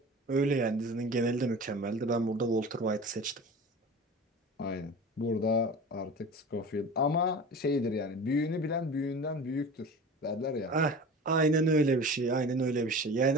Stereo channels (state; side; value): normal; both; correlation 0.36